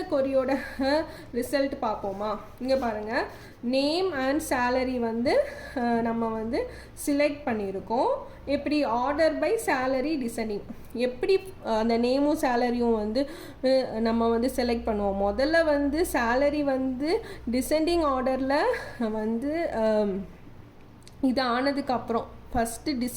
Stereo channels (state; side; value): identical; both; correlation 1.00